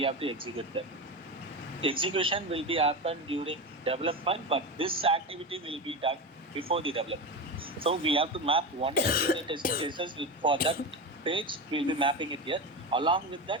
have to execute them. Execution will be happen during development, but this activity will be done before the development. So we have to map one unit test cases for that page. We'll be mapping it here. Along with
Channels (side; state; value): both; normal; correlation 0.20